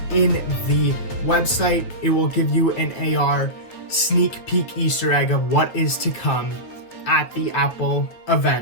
in the website, it will give you an AR sneak peek Easter egg of what is to come at the Apple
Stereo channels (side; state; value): right; late; 9.2 ms